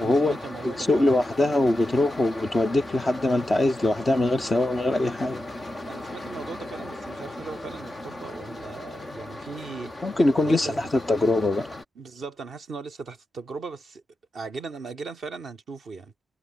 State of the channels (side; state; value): both; normal; correlation 0.90